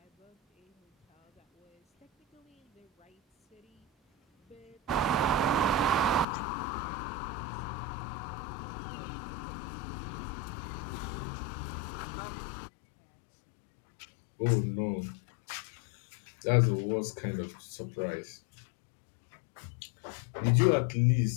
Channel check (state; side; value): drops out; right; at 6.2 s